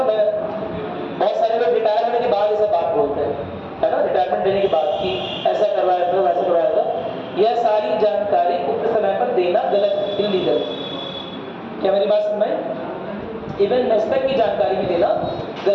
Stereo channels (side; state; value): both; identical; correlation 1.00